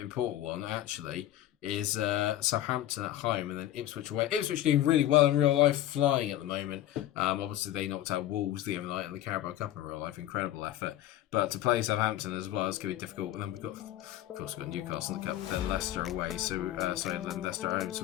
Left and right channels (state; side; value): quieter; right; 13.3 dB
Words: one actually is Southampton at home and then Ipswich away. Ipswich doing really well in real life, flying at the moment. Obviously, they knocked out Wolves the other night in the Carabao Cup in real life. Incredible effort. But to play Southampton as well is going to be difficult. And then we've got, of course, we've got Newcastle in the Cup, then Leicester away. Then Leicester at home. So